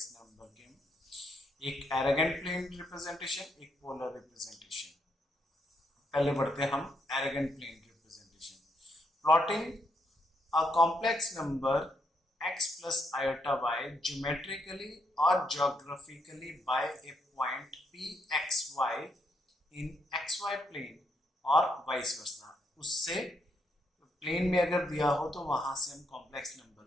number के, एक arrogant plane representation, एक polar representation. पहले बढ़ते हैं हम arrogant plane representation. Plotting a complex number x plus iota y geometrically or geographically by a point pxy in xy plane और vice versa. उससे प्लेन में अगर दिया हो तो वहां से हम कॉम्प्लेक्स नंबर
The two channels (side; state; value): both; normal; correlation 0.77